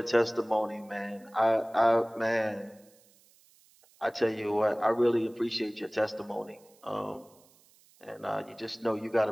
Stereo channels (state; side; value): noise; right; hiss, 30 dB below the sound